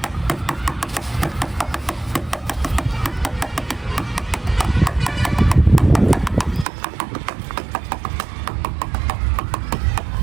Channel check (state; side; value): drops out; left; at 6.7 s